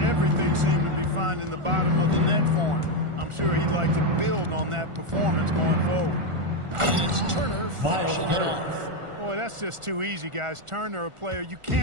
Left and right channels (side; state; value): left; late; 1.4 ms